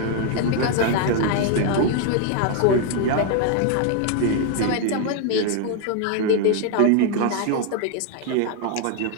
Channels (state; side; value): different; both; correlation 0.01